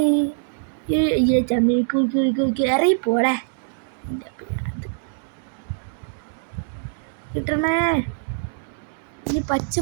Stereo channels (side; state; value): left; silent; 63 dB below the other